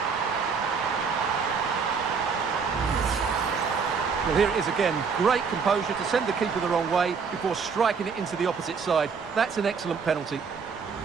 Well, here it is again. Great composure to send the keeper the wrong way before striking it into the opposite side. That's an excellent penalty.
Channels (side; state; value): left; quieter; 5.6 dB